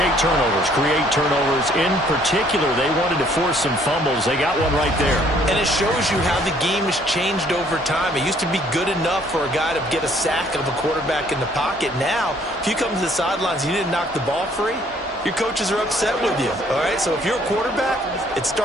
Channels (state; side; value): normal; both; correlation 0.62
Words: turnovers. In particular, they wanted to force some fumbles. They got one right there. And it shows you how the game has changed over time. It used to be good enough for a guy to get a sack of a quarterback in the pocket. Now, if you come to the sidelines and you didn't knock the ball free, your coaches are upset with you. All right, so if you're a quarterback, it